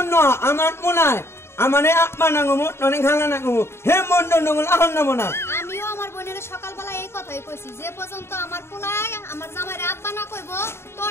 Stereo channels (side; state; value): right; late; 0.12 ms